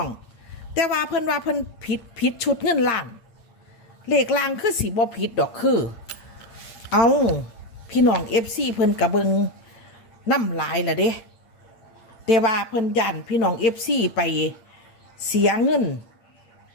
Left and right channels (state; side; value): late; right; 8.7 ms